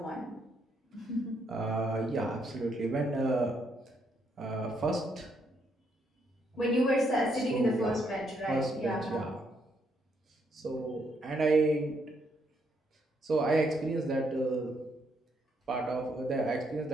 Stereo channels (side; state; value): both; normal; correlation 0.75